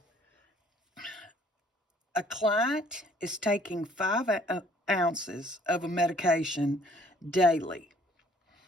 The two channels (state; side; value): normal; both; correlation 0.59